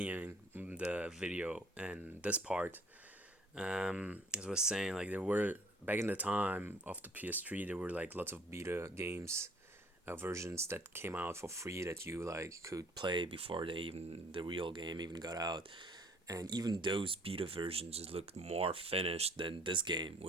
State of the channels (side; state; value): both; normal; correlation 0.57